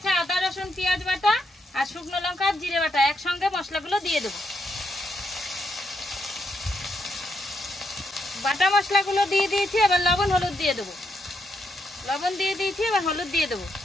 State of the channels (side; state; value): both; normal; correlation 0.80